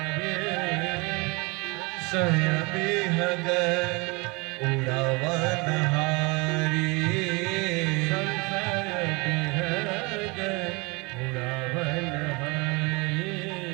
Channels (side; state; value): left; quieter; 27.5 dB